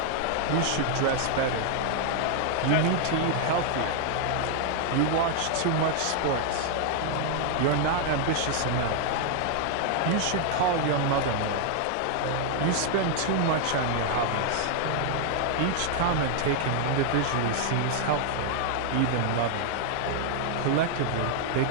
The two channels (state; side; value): different; both; correlation 0.00